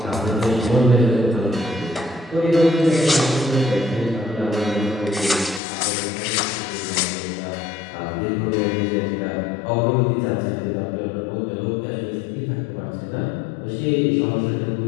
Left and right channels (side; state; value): right; drops out; at 5.6 s